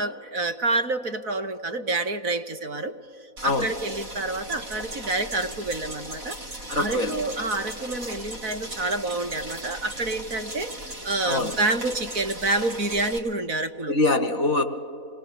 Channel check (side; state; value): left; late; 4.0 ms